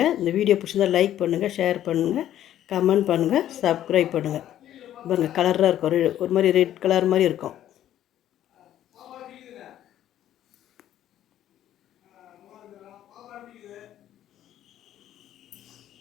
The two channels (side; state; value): right; quieter; 11.9 dB